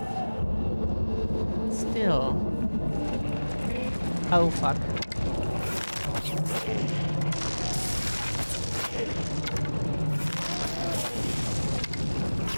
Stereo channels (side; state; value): both; inverted; correlation -1.00